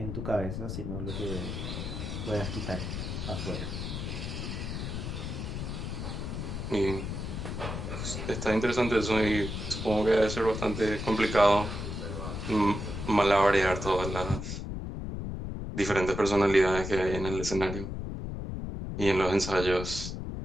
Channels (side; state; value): left; noise; rumble, 5 dB below the sound